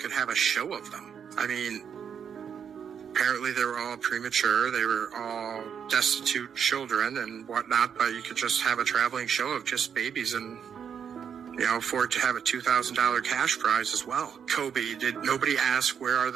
have a show of them. I mean, apparently they were all premature, they were all destitute children and whatnot, but you could just have a traveling show of just babies and, you know, for it to have a $2,000 cash prize as well. Kobe, did nobody ask where are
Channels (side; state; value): left; quieter; 7.6 dB